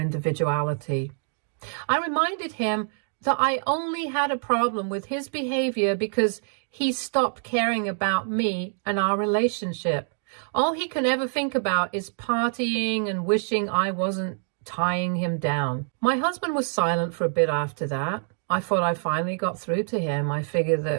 I reminded him that I only had a problem with his behavior because he stopped caring about me and our relationship. All he can ever think about is partying and wishing I wasn't tying him down. My husband was silent for a bit after that. I thought I finally got through to him. I figured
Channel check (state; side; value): silent; left; 60 dB below the other